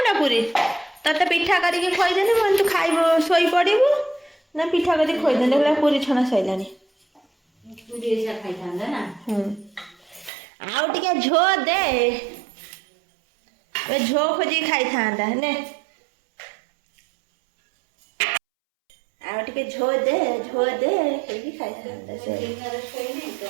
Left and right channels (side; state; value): left; drops out; at 10.3 s